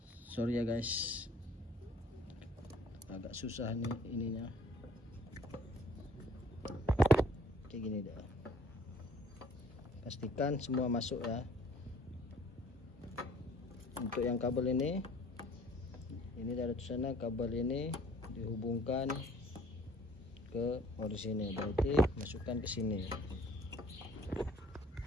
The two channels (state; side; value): normal; both; correlation 0.55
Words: Sorry ya guys, agak susah nih ininya. Kayak gini dah. Pastikan semua masuk ya. Untuk yang kabel ini dari sana kabel ini dihubungkan ke orisinil, berarti masukkan ke sini.